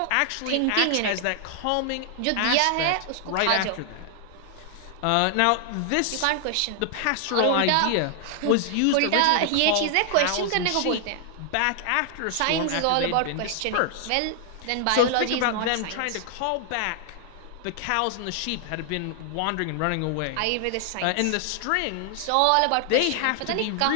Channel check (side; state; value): both; different; correlation 0.00